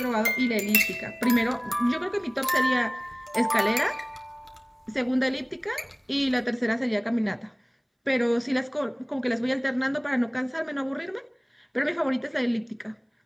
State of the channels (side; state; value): both; identical; correlation 1.00